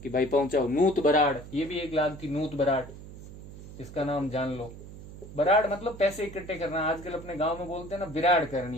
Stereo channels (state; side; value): noise; right; hum, 14 dB below the sound